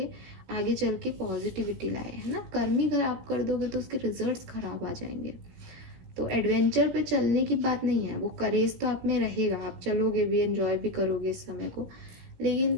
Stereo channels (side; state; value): left; late; 17 ms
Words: आगे चल के पॉजिटिविटी लाए, है ना। कर्म ही अगर आप कर दोगे तो उसके रिजल्ट्स खराब आ जाएंगे। तो एडवेंचर पे चलने की बात नहीं है, वो करेज तो आप में रहेगा, आप चलोगे भी, एंजॉय भी करोगे इस समय को, लेकिन